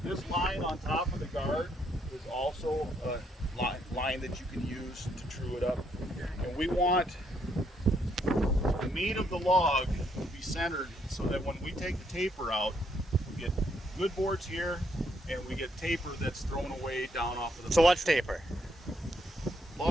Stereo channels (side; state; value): both; normal; correlation 0.73